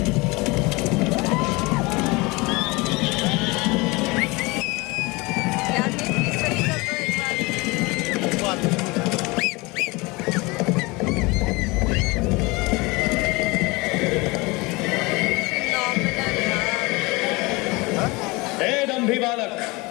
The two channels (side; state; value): right; quieter; 24.6 dB